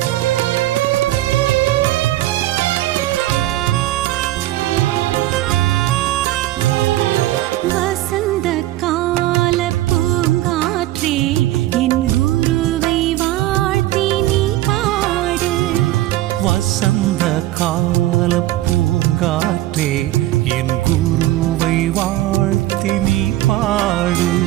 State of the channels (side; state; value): left; quieter; 15.8 dB